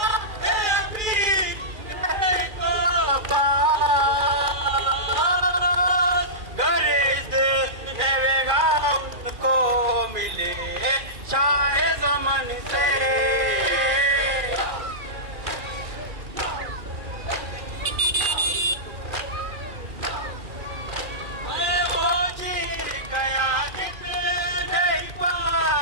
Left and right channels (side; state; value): left; late; 2.4 ms